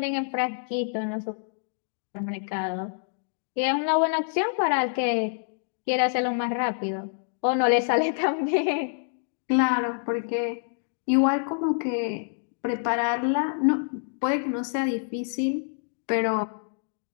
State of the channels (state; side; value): silent; right; digital silence